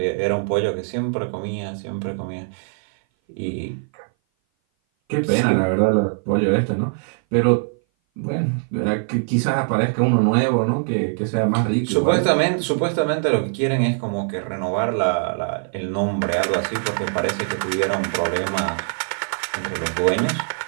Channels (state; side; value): silent; left; 58 dB below the other